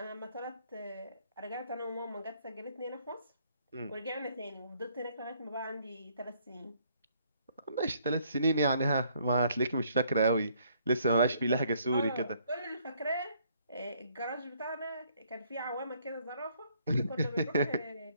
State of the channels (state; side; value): inverted; both; correlation -0.66